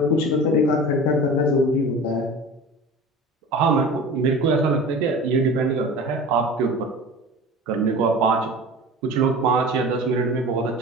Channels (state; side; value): normal; both; correlation 0.36